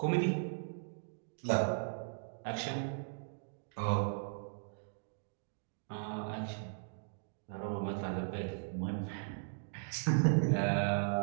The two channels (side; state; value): left; silent; digital silence